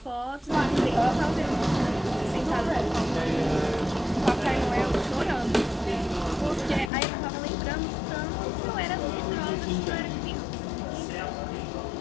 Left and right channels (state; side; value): drops out; right; at 6.9 s